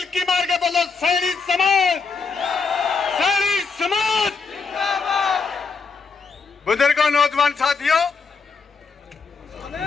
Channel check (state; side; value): quieter; right; 4.9 dB